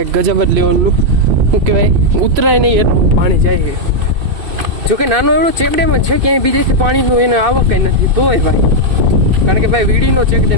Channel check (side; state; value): left; late; 2.6 ms